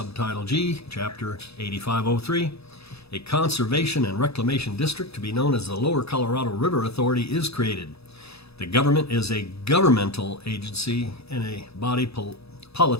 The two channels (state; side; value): late; right; 0.78 ms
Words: G, Chapter 8503. A conservation and reclamation district to be known as the Lower Colorado River Authority is created. The government is a governmental agency and a body